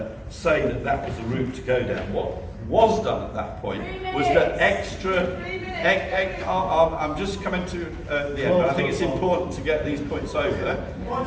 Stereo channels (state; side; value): identical; both; correlation 1.00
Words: say that that was the route to go down. What was done at that point was that I'm just coming to the end, but I think it's important to get these points over.